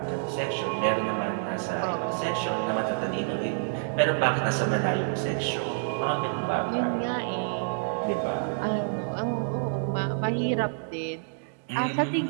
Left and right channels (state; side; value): silent; left; digital silence